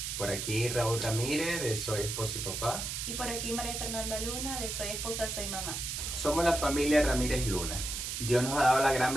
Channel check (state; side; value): noise; right; hiss, 4 dB below the sound